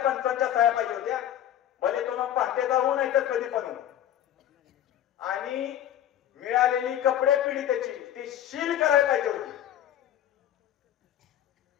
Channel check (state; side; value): quieter; right; 11.2 dB